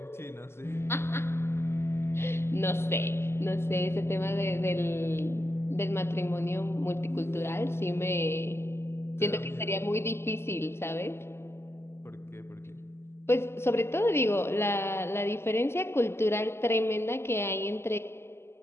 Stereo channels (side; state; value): right; late; 0.12 ms